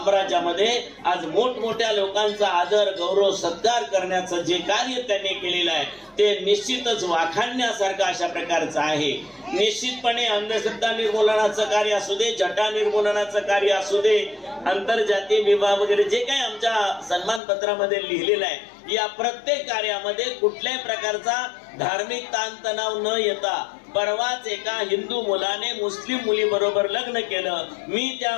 आज मोठमोठ्या लोकांचा आदर गौरव सत्कार करण्याचं जे कार्य त्यांनी केलेलं आहे ते निश्चितच वाखाणण्यासारखं अशा प्रकारचं आहे। निश्चितपणे अंधश्रद्धा निर्मूलनाचं कार्य असू दे, जटा निर्मूलनाचं कार्य असू दे, आंतरजातीय विवाह वगैरे जे काही आमच्या सन्मान पत्रामध्ये लिहिलेलं आहे, या प्रत्येक कार्यामध्ये कुठल्याही प्रकारचा धार्मिक ताणतणाव न येता परवाच एका हिंदू मुलाने मुस्लिम मुली बरोबर लग्न केलं। मी त्या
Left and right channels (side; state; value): right; drops out; at 17.4 s